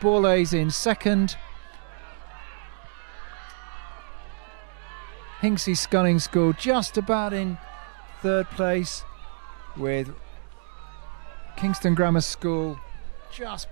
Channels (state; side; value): silent; left; 56 dB below the other